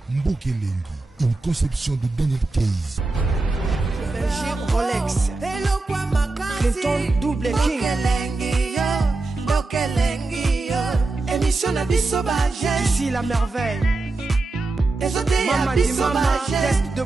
Mbokelengi, une conception de Daniel Case. Rolex, Clinton Double King, émission de Bissobage, ici la merveille. Mama di mama, test de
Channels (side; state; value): left; quieter; 3.3 dB